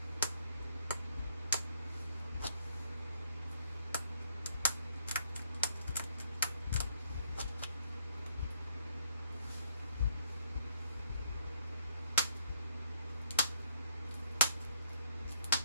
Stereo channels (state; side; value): inverted; both; correlation -0.68